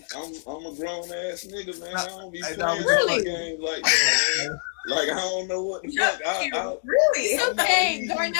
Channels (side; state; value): right; silent; digital silence